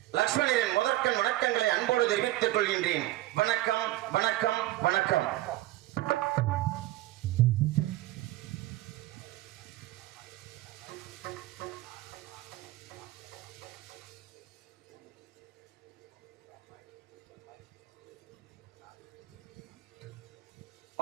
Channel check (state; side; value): quieter; left; 16.7 dB